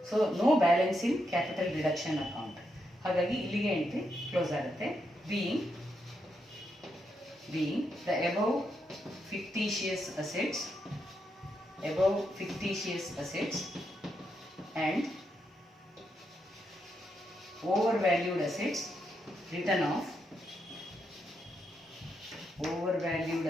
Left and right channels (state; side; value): normal; both; correlation 0.82